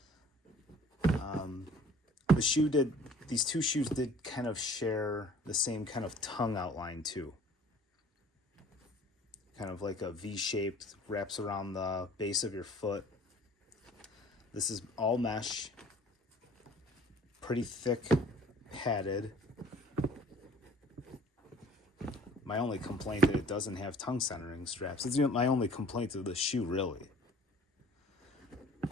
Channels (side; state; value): both; normal; correlation 0.50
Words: The shoe did, these two shoes did kind of share the same kind of tongue outline too. Kind of like a V-shaped, wraps around the base of your foot. This is all mesh, pretty thick, padded. My only complaint that it doesn't have tongue centering straps. It's my only complaint of the shoe, really.